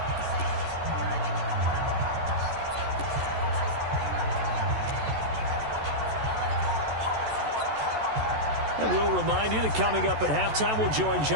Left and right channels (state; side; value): late; left; 14 ms